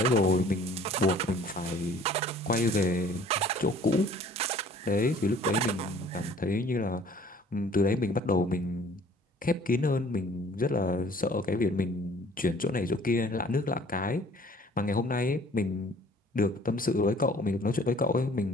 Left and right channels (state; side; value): normal; both; correlation 0.54